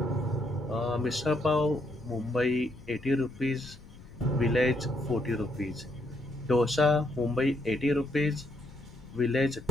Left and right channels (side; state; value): left; noise; rumble, 19 dB below the sound